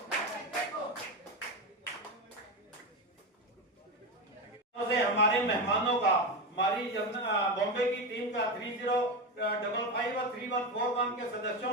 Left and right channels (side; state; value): both; normal; correlation 0.17